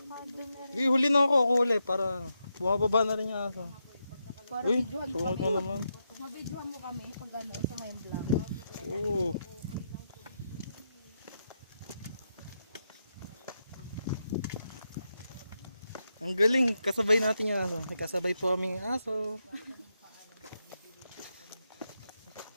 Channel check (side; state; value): both; inverted; correlation -0.84